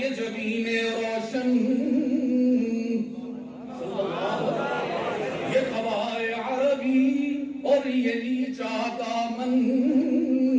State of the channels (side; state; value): both; identical; correlation 1.00